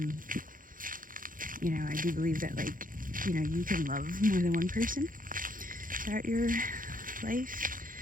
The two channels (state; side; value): late; left; 0.40 ms